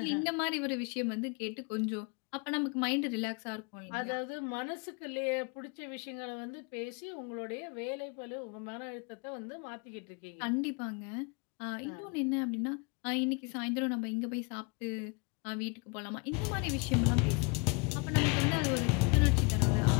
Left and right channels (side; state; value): right; quieter; 31.1 dB